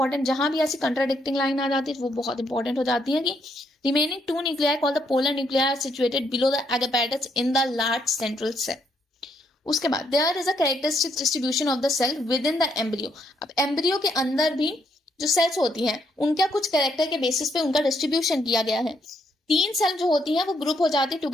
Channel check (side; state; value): both; normal; correlation 0.74